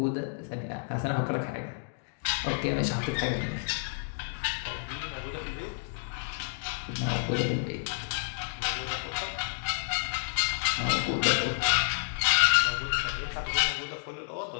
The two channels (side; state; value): right; silent; digital silence